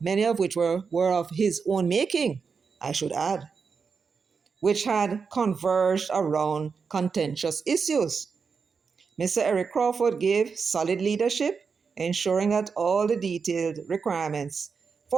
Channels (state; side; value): quieter; left; 5.5 dB